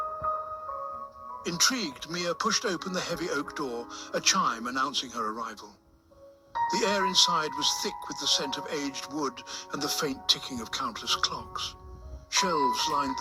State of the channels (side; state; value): both; identical; correlation 1.00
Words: Intrigued, Mia pushed open the heavy oak door, a chime announcing her arrival. The air inside was thick with the scent of aged wood and the faint ticking of countless clocks. Shelves lined